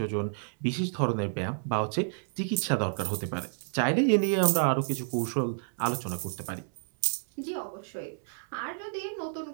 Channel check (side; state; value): left; silent; digital silence